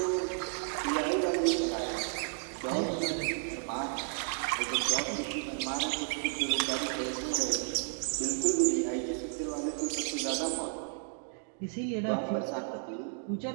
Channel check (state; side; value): silent; left; 56 dB below the other